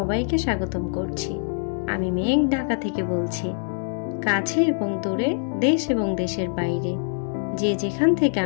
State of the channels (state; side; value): silent; right; 62 dB below the other